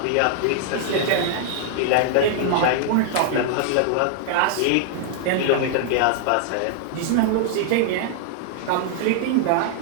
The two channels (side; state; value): both; different; correlation 0.00